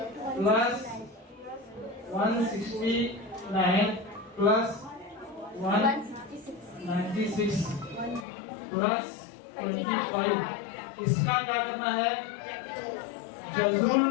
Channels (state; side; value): drops out; right; at 8.2 s